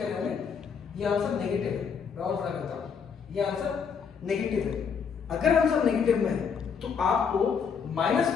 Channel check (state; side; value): quieter; right; 6.5 dB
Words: हमें, ये आंसर नेगेटिव है। मैं और बड़ा करता हूं, ये आंसर नेगेटिव है। अगर आंसर नेगेटिव में है तो आपको माइनस